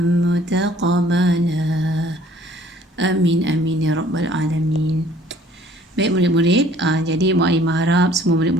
متقبلا آمين آمين يا رب العالمين. Baik murid-murid, jadi Mu'alimah harap semua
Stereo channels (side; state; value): both; normal; correlation 0.56